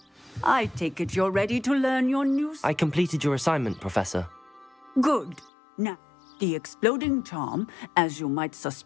I take it you're ready to learn your new... I completed your assignment, Professor. Good. Now, the exploding charm, as you might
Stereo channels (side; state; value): right; drops out; at 5.5 s